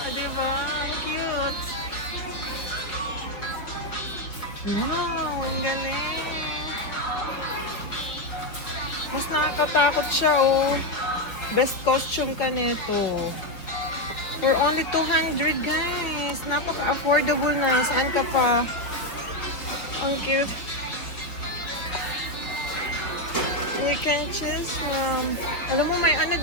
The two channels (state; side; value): late; right; 4.6 ms